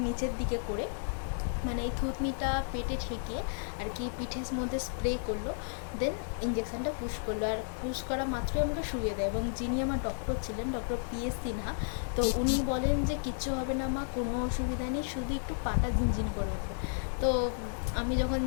নিচের দিকে করে, মানে এই থুতনিটা পেটে ঠেকিয়ে আর কি পিঠের মধ্যে স্প্রে করলো। দেন ইঞ্জেকশানটা পুশ করলো, আর পুশ করা মাত্রই আমাকে শুয়ে দেয়। এবং যিনি আমার ডক্টর ছিলেন, ডক্টর PS সিনহা, তো উনি বলেন যে কিচ্ছু হবে না মা, কোনো অসুবিধা নেই, শুধু একটু পাটা ঝিনঝিন করে ওঠে। তো আমি যখন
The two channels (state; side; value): silent; right; digital silence